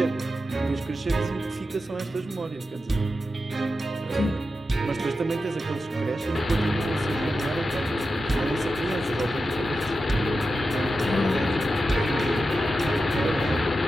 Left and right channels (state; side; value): normal; both; correlation 0.90